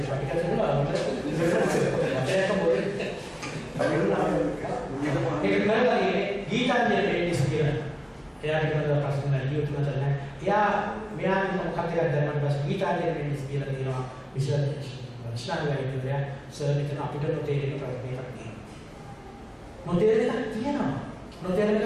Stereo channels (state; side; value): identical; both; correlation 1.00